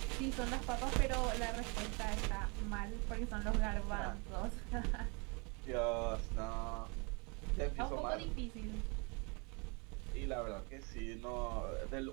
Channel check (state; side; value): quieter; left; 31.8 dB